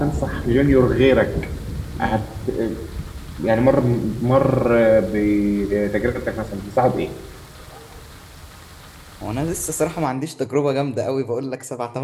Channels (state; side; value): identical; both; correlation 1.00